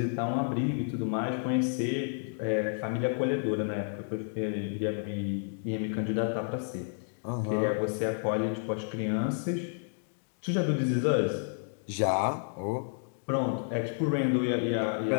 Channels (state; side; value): silent; right; digital silence